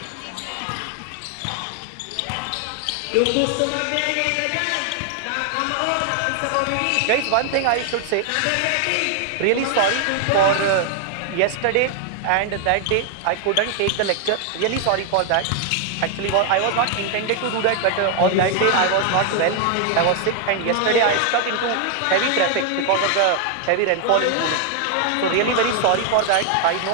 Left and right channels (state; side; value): different; both; correlation 0.00